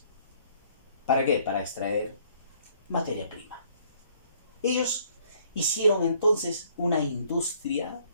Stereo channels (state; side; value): inverted; both; correlation -0.62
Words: ¿Para qué? Para extraer materia prima. Ellos hicieron entonces una industria,